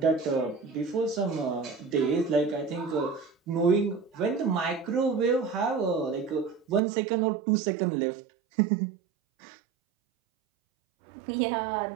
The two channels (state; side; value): drops out; left; at 6.8 s